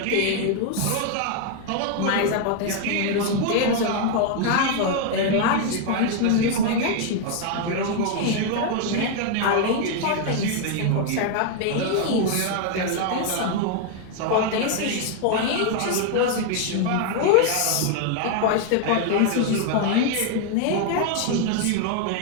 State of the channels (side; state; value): both; different; correlation 0.00